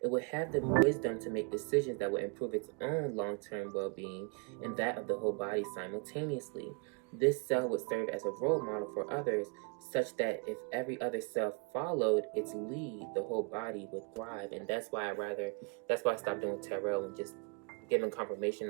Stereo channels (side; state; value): left; quieter; 34.1 dB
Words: It would have the wisdom to make decisions that would improve its own long-term well-being and that of the whole body simultaneously. This cell would serve as a role model for others, such that if every other cell followed its lead, the whole body would thrive. And that's why I stopped doing tarot and just giving